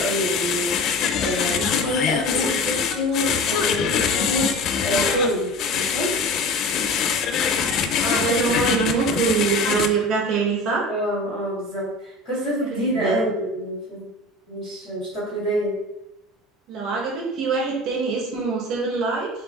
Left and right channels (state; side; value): normal; both; correlation 0.35